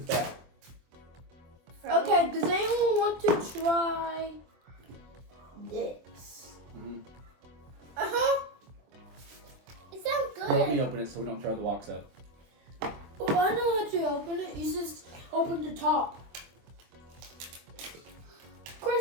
that. Okay, does anyone want to try this? Mm-hmm. It sounds good. Let me open it so we don't tear the box up. Oh, I know how to open it. You just open the top.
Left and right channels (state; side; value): late; left; 24 ms